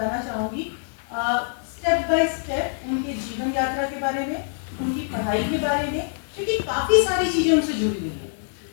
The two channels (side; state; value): right; silent; digital silence